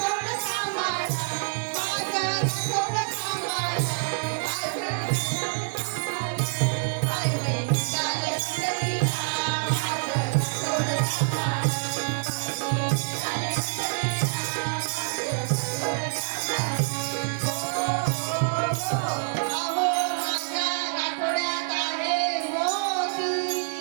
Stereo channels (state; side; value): silent; left; digital silence